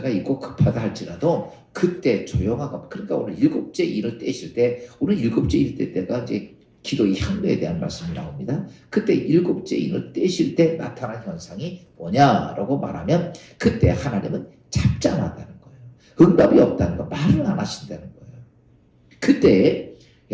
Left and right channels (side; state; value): both; identical; correlation 1.00